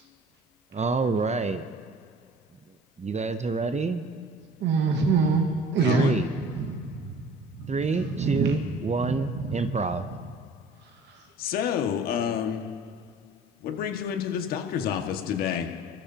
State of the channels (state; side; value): normal; both; correlation 0.46